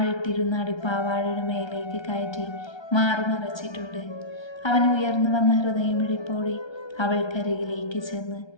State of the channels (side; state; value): right; late; 1.3 ms